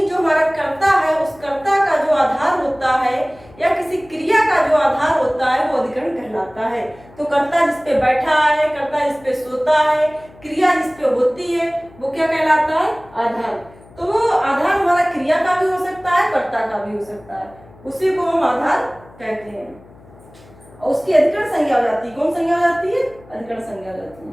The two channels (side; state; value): left; noise; hum, 24 dB below the sound